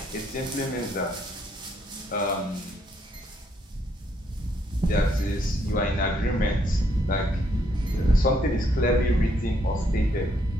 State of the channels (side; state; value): both; normal; correlation 0.72